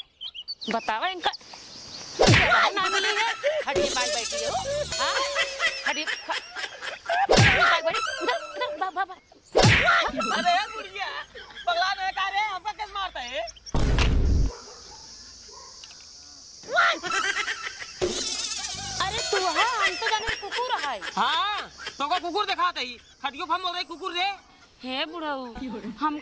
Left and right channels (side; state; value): both; identical; correlation 1.00